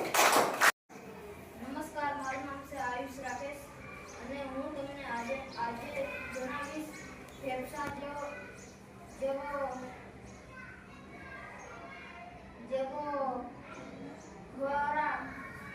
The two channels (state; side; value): identical; both; correlation 1.00